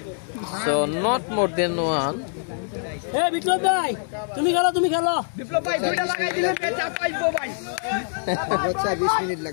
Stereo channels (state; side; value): silent; right; digital silence